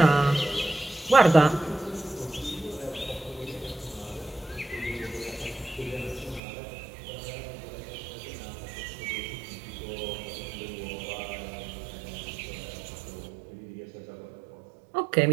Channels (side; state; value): left; drops out; at 6.4 s